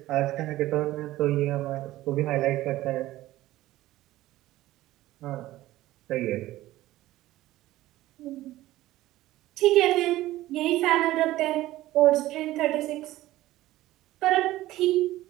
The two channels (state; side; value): quieter; left; 16.0 dB